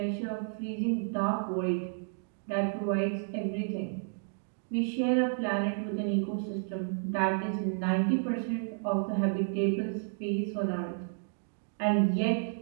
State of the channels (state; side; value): silent; left; digital silence